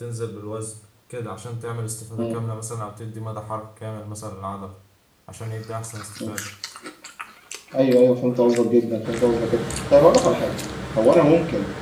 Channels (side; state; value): both; identical; correlation 1.00